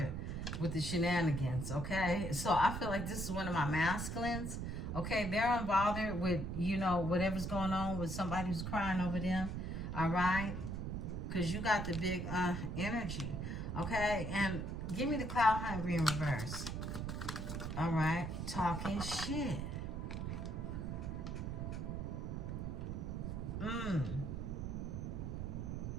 with the shenanigans, okay? So I feel like this is one of my masculines, okay? They're unbothered with, you know, whatever's going on with somebody who's crying over them, all right? Because you got the big energy, okay? And give me the cloud hungry in reverse. All right, talking shit.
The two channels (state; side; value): noise; right; rumble, 4 dB below the sound